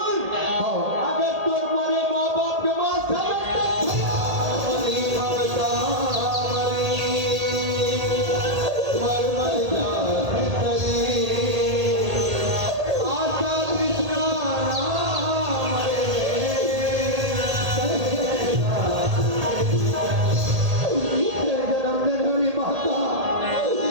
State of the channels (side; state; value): left; late; 1.8 ms